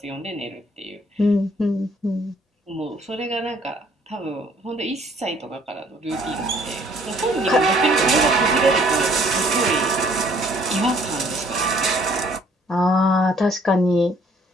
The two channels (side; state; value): both; normal; correlation 0.60